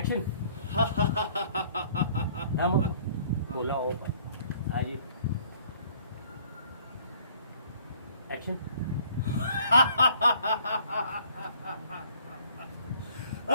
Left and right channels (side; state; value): both; inverted; correlation -0.58